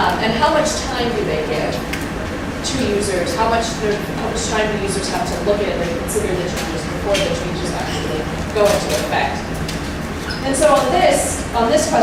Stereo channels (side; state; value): both; identical; correlation 1.00